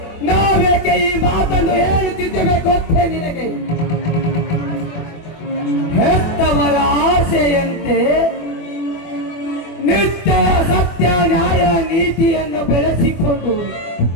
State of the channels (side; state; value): right; late; 24 ms